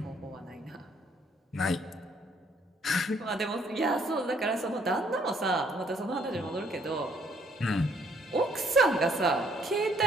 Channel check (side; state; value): both; normal; correlation 0.66